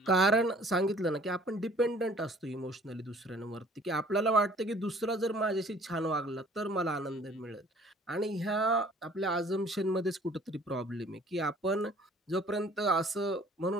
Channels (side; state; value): both; normal; correlation 0.54